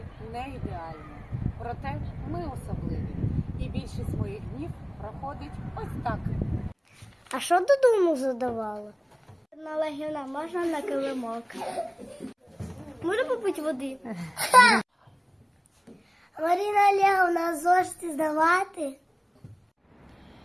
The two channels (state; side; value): identical; both; correlation 1.00